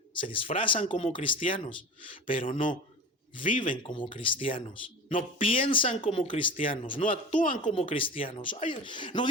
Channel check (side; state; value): both; normal; correlation 0.34